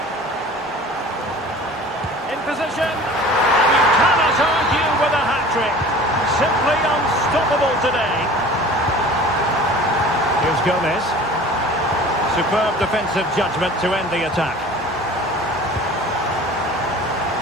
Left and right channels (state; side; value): normal; both; correlation 0.43